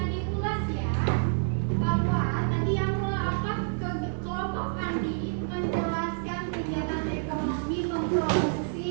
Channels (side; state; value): left; silent; digital silence